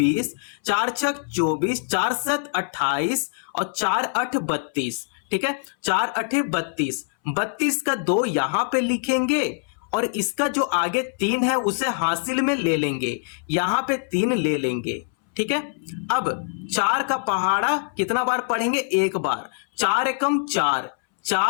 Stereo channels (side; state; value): right; silent; 63 dB below the other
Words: 4 छक 24, 4 7 28 और 4 8 32। ठीक है, 4 8 32। 32 का 2 यहाँ पे लिखेंगे और इसका जो आगे 3 है उसे हासिल में ले लेंगे, यहाँ पे 3 ले लेंगे। ठीक है, अब 4 का पहाड़ा कितना बार पढ़ेंगे, 1 बार। 4 एकम 4,